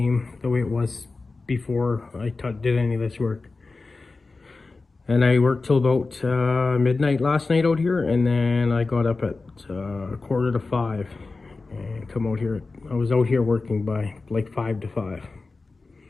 the way it was before I did any of this work. And I worked till about midnight last night out here, and then I got up at 4:45 and come out here. I was out here working by like 5 to 5.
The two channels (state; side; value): quieter; right; 3.8 dB